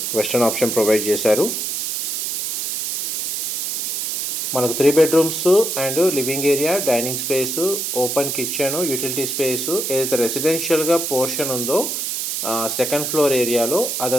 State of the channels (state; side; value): noise; right; hiss, 2 dB below the sound